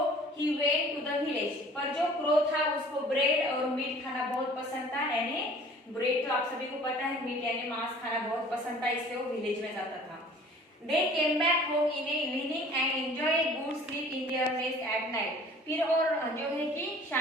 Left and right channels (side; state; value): both; normal; correlation 0.49